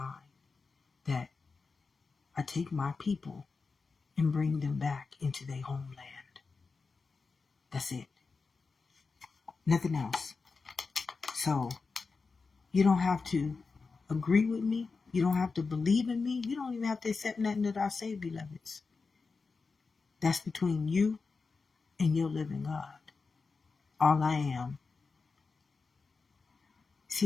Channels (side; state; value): right; quieter; 4.5 dB